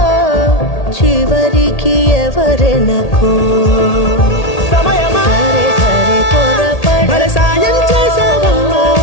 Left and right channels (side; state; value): right; late; 1.8 ms